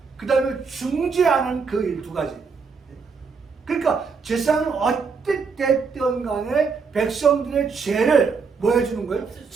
그 다음에 중재하는 그 일 두 가지. 그러니까 제사장은 어땠든 간에 백성들의 죄를 뭐 해주는 거예요?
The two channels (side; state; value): left; quieter; 5.2 dB